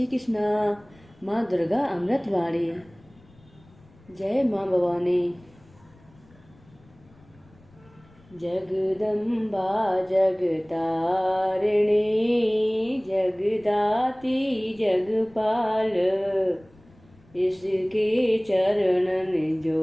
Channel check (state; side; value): noise; left; rumble, 28 dB below the sound